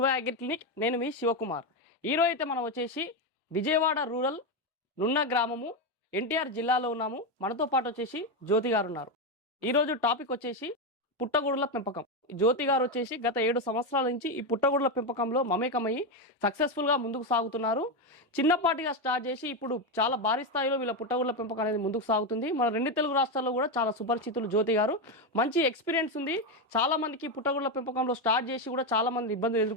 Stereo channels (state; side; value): normal; both; correlation 0.10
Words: అగ్రి క్లినిక్. నేను మీ శివకుమార్. ఈరోజు అయితే మనం వచ్చేసి విజయవాడ రూరల్ నున్న గ్రామము ఎన్టీఆర్ జిల్లాలో ఉన్నాము. మనతో పాటు వచ్చేసి జ్యోతి గారు ఉన్నారు. ఈరోజు టాపిక్ వచ్చేసి పుట్టగొడుగుల పెంపకం. జ్యోతి గారు వచ్చేసి గత 7 సంవత్సరాల నుంచి ఈ పుట్టగొడుగుల పెంపకంలో మమేకమయ్యి సక్సెస్ఫుల్గా ముందుకు సాగుతున్నారు. చిన్నపాటిగా స్టార్ట్ చేసి ఇప్పుడు చాలా భారీ స్థాయిలో వీళ్ళ పుట్టగొడుగుల పెంపకం అనేది ముందుకు సాగుతుంది. మన 2 తెలుగు రాష్ట్రాల్లో కూడా చాలా సుపరిచితులు జ్యోతి గారు. మంచి ఎక్స్పీరియన్స్ ఉంది. చాలా మందికి పుట్టగొడుగుల పెంపకంలో స్టార్ట్ చేసి కూడా చాలా మంది ఇబ్బందులు